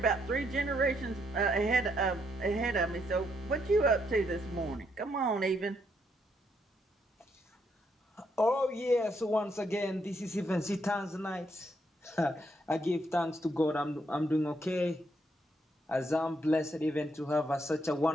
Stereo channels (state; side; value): normal; both; correlation 0.75